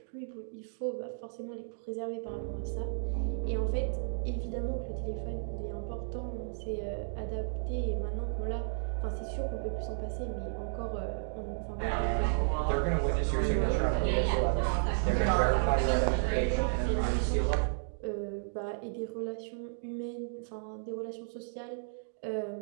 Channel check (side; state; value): left; silent; digital silence